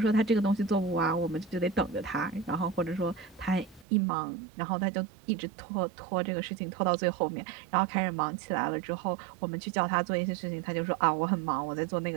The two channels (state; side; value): drops out; left; at 3.9 s